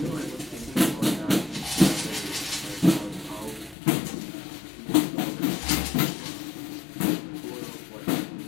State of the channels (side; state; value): right; drops out; at 3.8 s